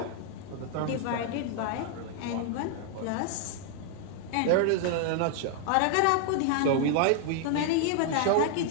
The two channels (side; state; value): both; different; correlation 0.00